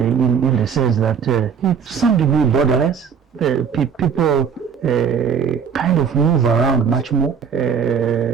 the sense that it's some degree borderless. People kind of move around much more,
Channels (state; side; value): quieter; left; 6.8 dB